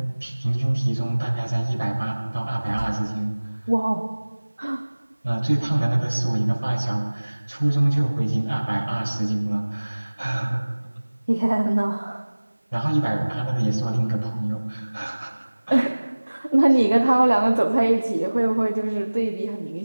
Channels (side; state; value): both; inverted; correlation -1.00